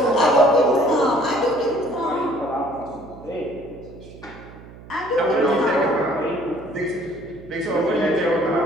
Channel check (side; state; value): right; noise; hum, 19 dB below the sound